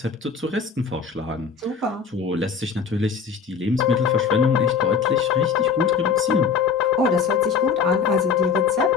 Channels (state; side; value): quieter; right; 6.0 dB